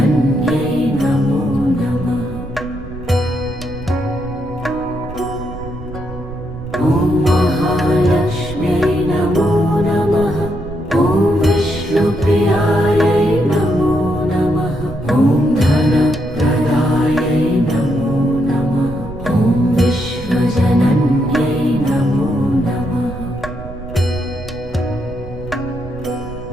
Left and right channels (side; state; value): right; noise; rumble, 13 dB below the sound